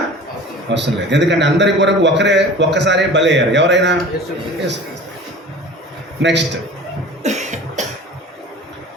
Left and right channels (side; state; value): both; normal; correlation 0.40